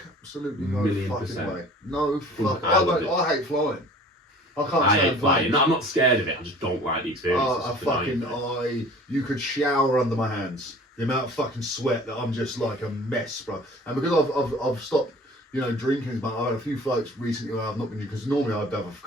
Absolutely no fucking way. No fucking I hate flying. I can't stand flying. No, I'm not scared of it, I just don't like the experience. You could shower under my hands. The amount of fucking sweat that I'm just like a mess, bro. And because I've stopped, drinking, but I had a few flights recently where I've not been, because normally I'd have a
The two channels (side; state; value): both; normal; correlation 0.47